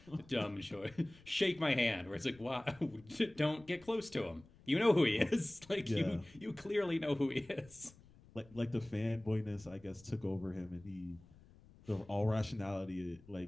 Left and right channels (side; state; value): left; noise; rumble, 24 dB below the sound